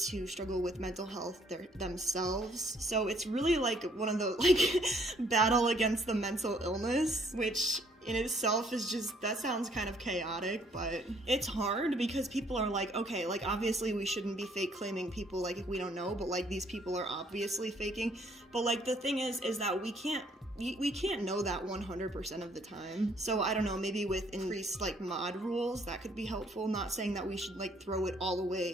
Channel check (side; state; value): both; normal; correlation 0.65